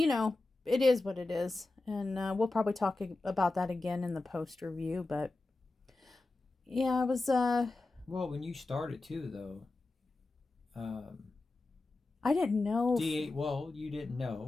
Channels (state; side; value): quieter; right; 3.2 dB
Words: it is what it is, and we'll probably talk about that again in the post review. But yeah, I was well, when you started too, though, I didn't know. Well, you didn't